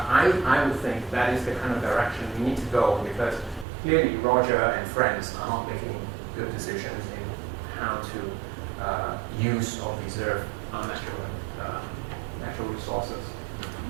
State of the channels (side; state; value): left; drops out; at 3.7 s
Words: I would think that is the kind of direction we need to go, because clearly Roger and friends are not making good decisions in how to use or preserve our natural resources.